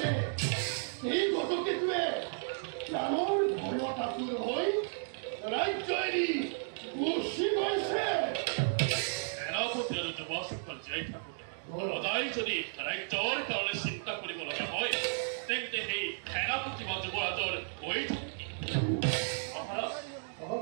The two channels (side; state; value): left; silent; digital silence